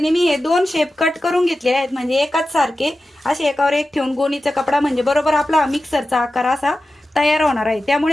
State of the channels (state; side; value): normal; both; correlation 0.94